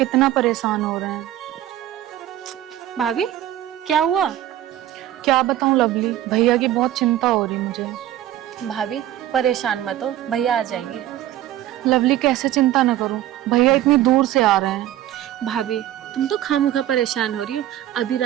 परेशान हो रहे हैं। भाभी क्या हुआ? क्या बताऊं लवली, भैया की बहुत चिंता हो रही मुझे। भाभी परेशान मत हो, भैया आ जाएंगे। लवली कैसे चिंता न करूं, भैया इतनी दूर से आ रहे हैं। भाभी तुम तो खामखा परेशान हो रही हो, अभी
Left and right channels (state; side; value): quieter; left; 13.0 dB